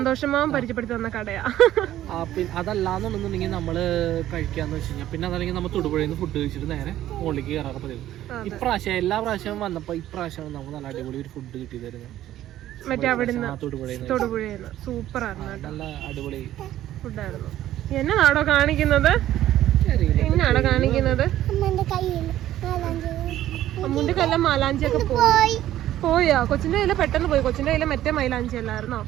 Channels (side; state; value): left; quieter; 13.1 dB